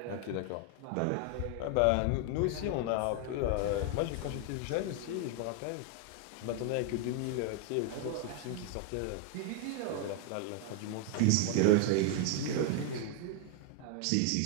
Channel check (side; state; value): both; different; correlation 0.00